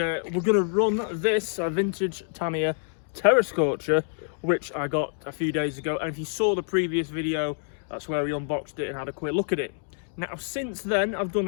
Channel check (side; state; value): right; silent; 60 dB below the other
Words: going to run this vintage Tamiya Terra Scorcher, which I got a few days ago. And if you saw the previous video, that's where we unboxed it and had a quick look at it. Now since then I've